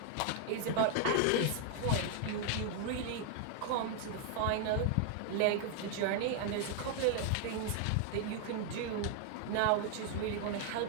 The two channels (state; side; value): different; both; correlation 0.00